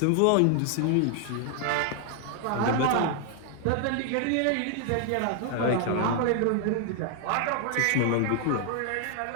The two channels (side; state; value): both; different; correlation 0.00